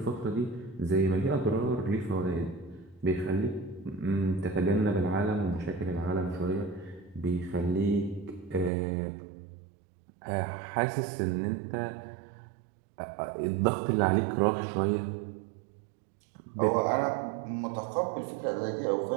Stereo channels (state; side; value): drops out; left; at 8.7 s